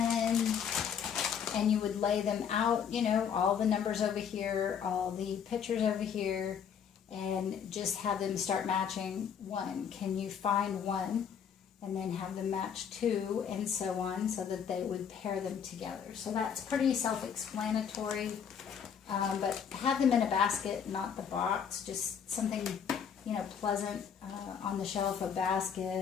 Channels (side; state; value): right; quieter; 7.6 dB